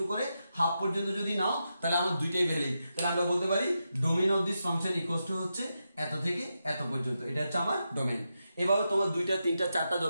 করে হাফ পর্যন্ত যদি নাও, তাহলে আমার দুইটাই ভ্যালিড। তাহলে আমরা বলতে পারি domain of this function equals two হচ্ছে এত থেকে এত পর্যন্ত, এটা হচ্ছে আমার ডোমেন। এভাবে তোমার 2টা 3টা 4টা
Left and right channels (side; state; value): both; inverted; correlation -0.87